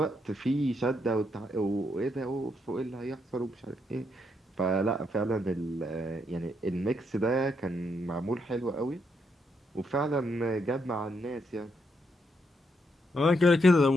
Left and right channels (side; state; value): both; normal; correlation 0.78